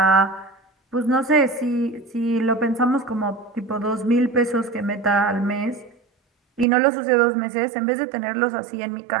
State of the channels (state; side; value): drops out; left; at 6.7 s